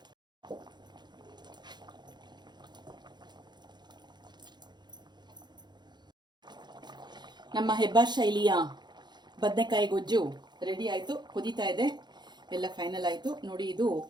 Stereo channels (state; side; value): late; left; 0.21 ms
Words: ನಮ್ಮ ಹೆಬ್ಬಾರ್ ಶೈಲಿಯ ಬದನೆಕಾಯಿ ಗೊಜ್ಜು ರೆಡಿ ಆಯಿತು. ಕುದೀತಾ ಇದೆ. ಎಲ್ಲ ಫೈನಲ್ ಆಯಿತು ನೋಡಿ. ಇದು